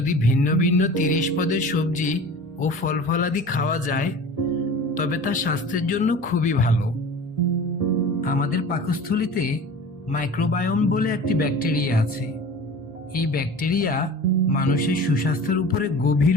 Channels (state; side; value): normal; both; correlation 0.39